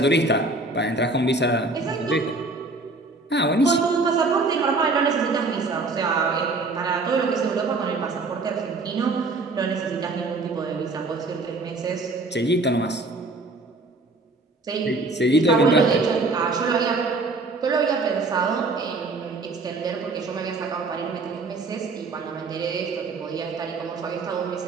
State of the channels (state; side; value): quieter; left; 3.4 dB